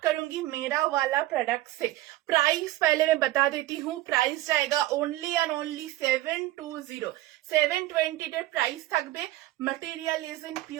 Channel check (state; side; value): quieter; left; 16.6 dB